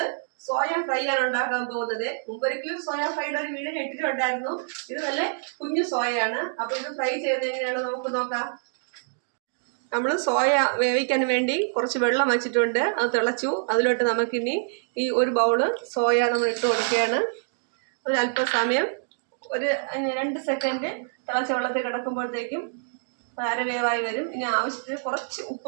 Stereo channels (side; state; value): left; silent; digital silence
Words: സോയ ഫ്രൈ ആണ് ഉണ്ടാക്കാൻ പോകുന്നത്. മുമ്പൊരിക്കലും സോയ ഫ്രൈയുടെ ഒരു വീഡിയോ ഇട്ടിട്ടുണ്ടായിരുന്നു. ഇത് നല്ല കുഞ്ഞു സോയയാണ്. അപ്പൊ ഇത് ഫ്രൈ ചെയ്യുന്നത് എങ്ങനെയാണ് നമുക്ക് നോക്കാം. നമ്മൾ സോയ വേവിക്കാൻ വേണ്ടി കുറച്ച് വെള്ളം വെച്ചിട്ടുണ്ട്. അത് തിളച്ചു. അതിലോട്ട് നമുക്കിനി ഈ ഒരു ബൗള് സോയ നമ്മൾ ഇട്ട് കൊടുക്കുകയാണ്. ഒരു അല്പസമയം ഒരു 2 സെക്കൻഡ് തിളച്ച വെള്ളത്തിൽ കിടക്കുമ്പോഴത്തേക്കും അരവേവായി വരും. ഇനി ആവശ്യത്തിന് കുറച്ച്